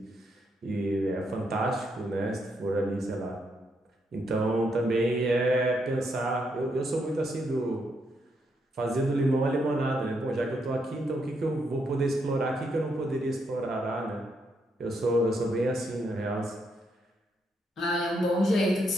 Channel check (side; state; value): both; normal; correlation 0.78